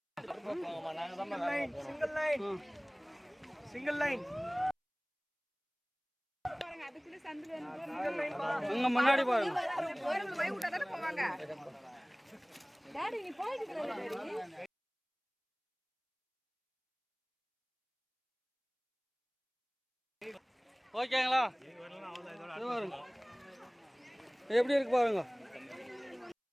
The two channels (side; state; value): both; identical; correlation 1.00